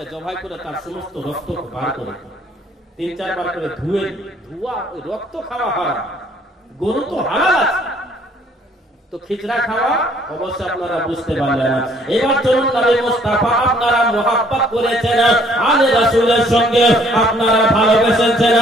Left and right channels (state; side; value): normal; both; correlation 0.61